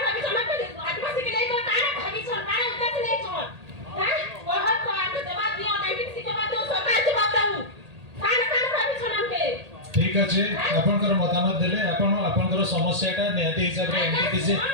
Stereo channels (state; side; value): late; left; 1.8 ms